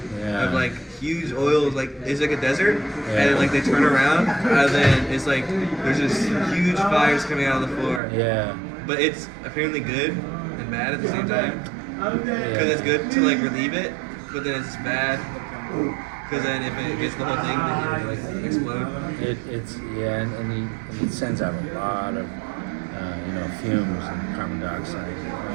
of like huge oils, like it's like a desert, and then like they turn around, and then it's like there's just huge fires coming out of the floor. Yeah. But it's apparently good and bad at the same time, because it's good to like relieve it, but then it's bad. Because then if it gets the whole thing, then it like explode. And it sends out a lot of fumes and carbon dioxide.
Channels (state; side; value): drops out; left; at 8.0 s